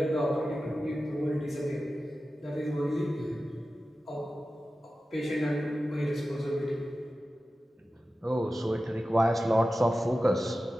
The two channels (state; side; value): normal; both; correlation 0.94